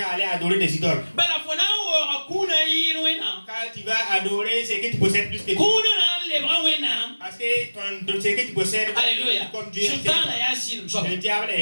à aller adorer des idoles. Quand tu vas adorer ce que tu possèdes plus que Dieu. Parce que ce que tu possèdes, comme Dieu, le diable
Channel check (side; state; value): both; inverted; correlation -1.00